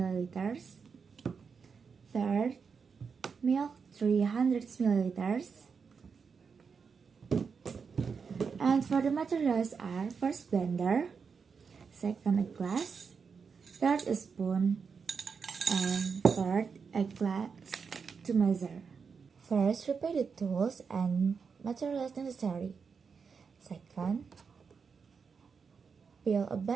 Third, milk 300 milliliters. And for the materials are: first, blender. Second, a glass. Third, a spoon. And fourth, a glass to measure. First, prepare the tools and materials necessary. Second, peel a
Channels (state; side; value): quieter; left; 5.7 dB